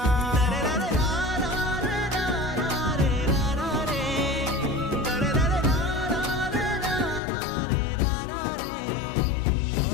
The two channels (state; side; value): drops out; right; at 7.2 s